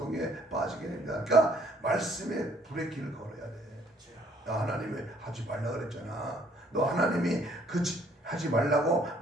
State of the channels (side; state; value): both; normal; correlation 0.63